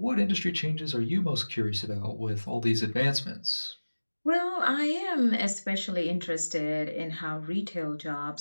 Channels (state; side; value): inverted; both; correlation -1.00